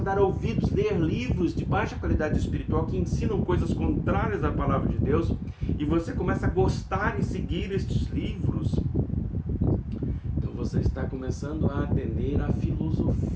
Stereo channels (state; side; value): identical; both; correlation 1.00